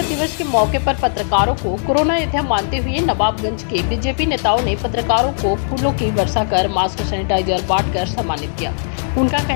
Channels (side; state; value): right; silent; digital silence